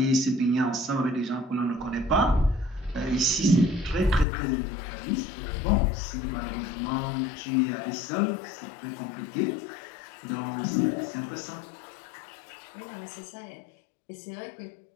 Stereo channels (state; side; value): drops out; right; at 4.2 s